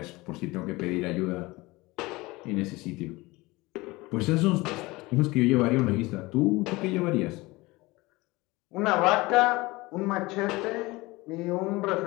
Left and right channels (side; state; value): right; quieter; 21.7 dB